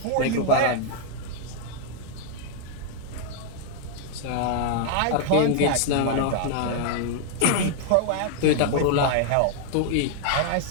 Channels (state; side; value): different; both; correlation -0.01